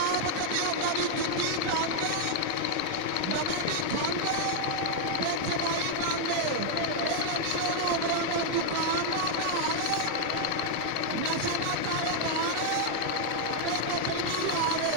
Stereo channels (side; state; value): both; different; correlation 0.00